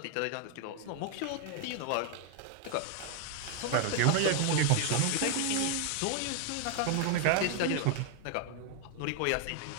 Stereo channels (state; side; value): different; both; correlation 0.00